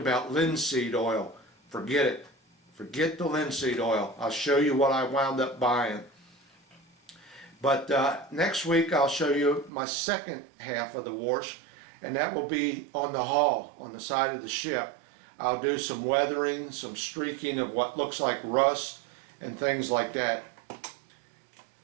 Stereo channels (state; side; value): drops out; left; at 9.7 s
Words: linseed oil. Forget it. Forget the linseed oil. I'll show you what I wound up buying. But next week I'll show you my second half of the wash, and that will be on the hull, on the side of the ship. I'll do some weathering, some streaking of what looks like rust and things like that.